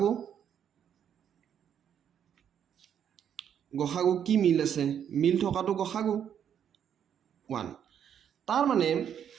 গসাগু কি মিল আছে মিল থকাটো গসাগু 1 তাৰ মানে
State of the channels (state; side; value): quieter; left; 8.9 dB